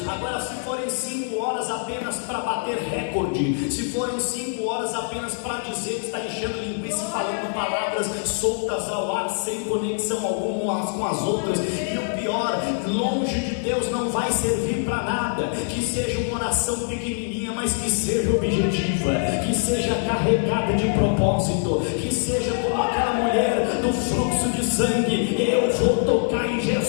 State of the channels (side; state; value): right; silent; 63 dB below the other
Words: Agora, se forem 5 horas apenas para bater recorde, se forem 5 horas apenas para dizer que está enchendo linguiça e falando palavras soltas ao ar, sem conexão alguma umas com as outras, e o pior, longe de Deus, não vai servir para nada. Que seja uma oração pequenininha, mas que seja objetiva, que seja carregada de propósito, que seja como aquela mulher do fluxo de sangue: eu vou tocar em